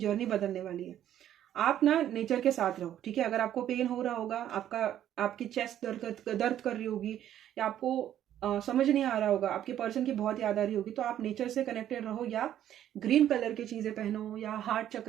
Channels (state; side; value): quieter; left; 11.2 dB